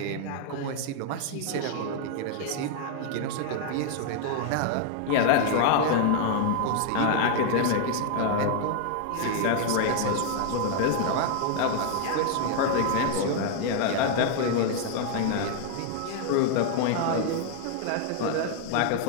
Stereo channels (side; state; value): both; different; correlation 0.00